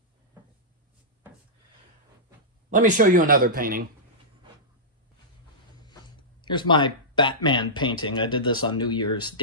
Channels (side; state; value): both; normal; correlation -0.15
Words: Let me show you another painting. Here's my Batman painting. I did this on New Year's